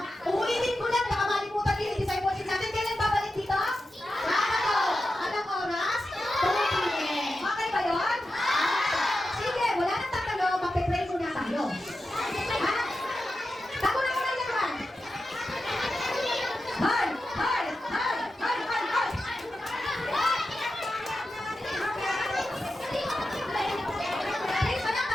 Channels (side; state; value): both; normal; correlation 0.91